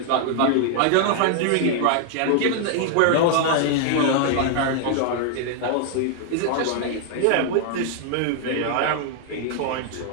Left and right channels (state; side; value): different; both; correlation 0.00